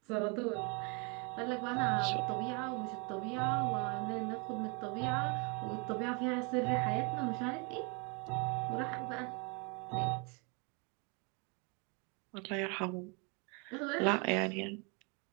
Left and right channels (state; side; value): quieter; left; 31.8 dB